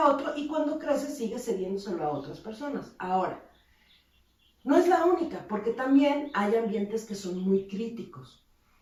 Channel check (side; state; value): both; identical; correlation 1.00